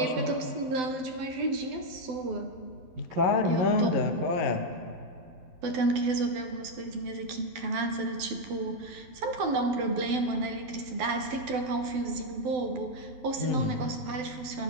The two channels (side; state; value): left; late; 12 ms